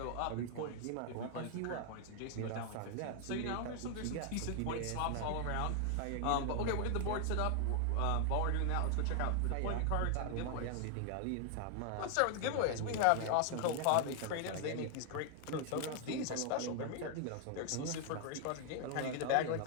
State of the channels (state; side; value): different; both; correlation 0.00